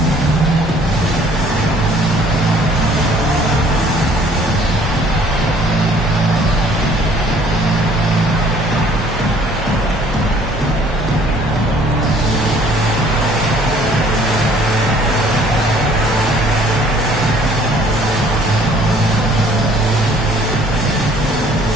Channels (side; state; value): both; normal; correlation 0.57